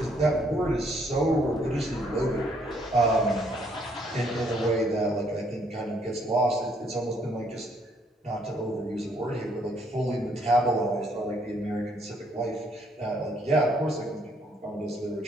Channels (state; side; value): normal; both; correlation 0.68